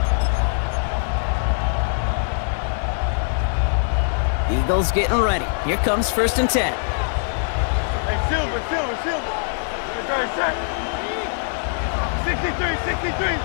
Eagles getting ready. Here comes 1st and 10. Hey, Silver. Right, sir. 63.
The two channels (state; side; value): silent; right; 60 dB below the other